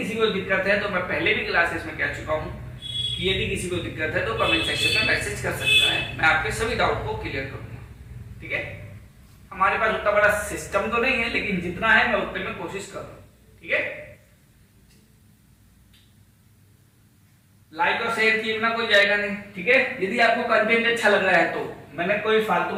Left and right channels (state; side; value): identical; both; correlation 1.00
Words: को दिक्कत है तो मैं पहले भी क्लासेस में कह चुका हूं कि यदि किसी को दिक्कत है तो कमेंट सेक्शन में मैसेज कर सकता है, मैं आपके सभी डाउट को क्लियर करूंगा। ठीक है, हमारे पास उतना बड़ा सिस्टम तो नहीं है, लेकिन जितना है मैं उतने में कोशिश कर रहा हूं। ठीक है, लाइक और शेयर किए बिना कोई जाएगा नहीं। ठीक है, यदि आपको कंटेंट अच्छा लग रहा है तो मैंने कोई फालतू